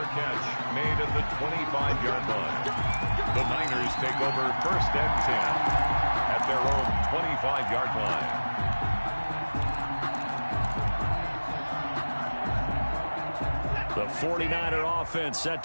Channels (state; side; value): inverted; both; correlation -1.00